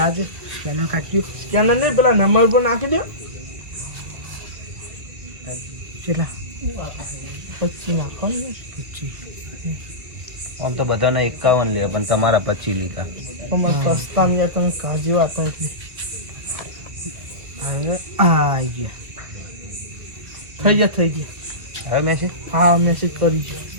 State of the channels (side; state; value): left; late; 2.1 ms